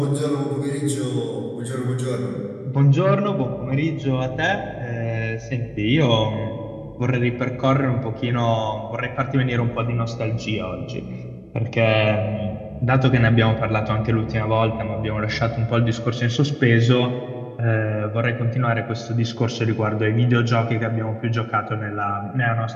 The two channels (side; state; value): both; identical; correlation 1.00